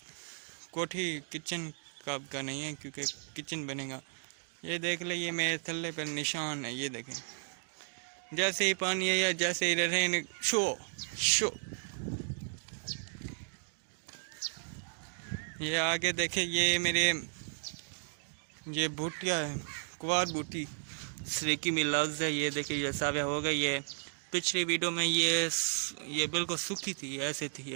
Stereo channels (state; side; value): silent; left; digital silence